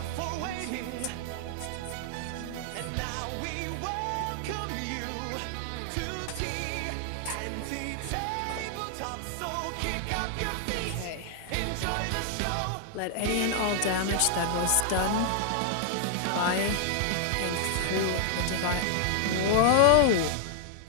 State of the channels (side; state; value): both; different; correlation -0.01